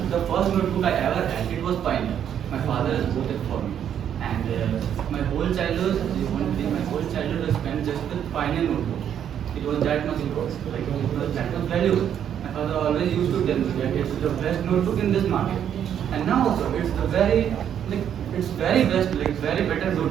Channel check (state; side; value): quieter; left; 9.3 dB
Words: the first notebook I ever had, it was Pioneer. My father has bought it for me, and my whole childhood was spent just with Pioneer notebook. It was that much important, like it was that much valuable. My father always used to tell me that it's the best notebook in this market, and now also it's the very best, like very better